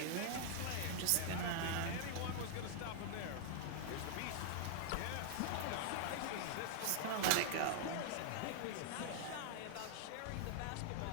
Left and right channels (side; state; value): both; different; correlation -0.01